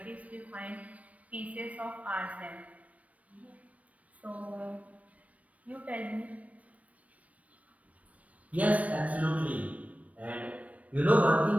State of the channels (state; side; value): late; left; 0.067 ms